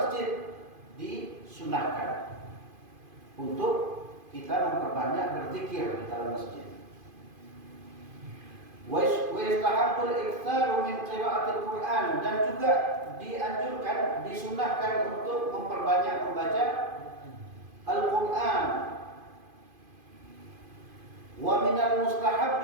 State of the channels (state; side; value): late; left; 2.5 ms